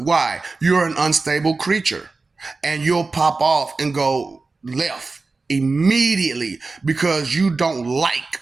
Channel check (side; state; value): left; quieter; 3.8 dB